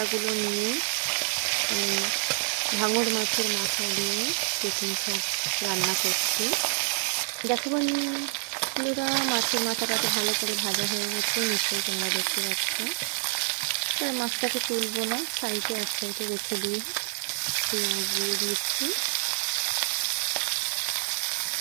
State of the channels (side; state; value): left; silent; digital silence